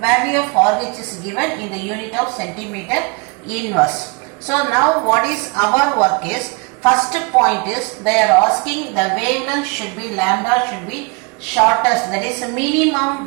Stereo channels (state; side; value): quieter; left; 29.5 dB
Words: value of RH is given in the unit of centimeter inverse. So now what is our work is, first point is they are asking the wavelength should be lambda should be shortest, that is minimum